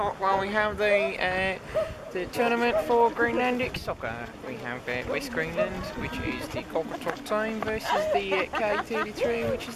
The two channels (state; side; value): identical; both; correlation 1.00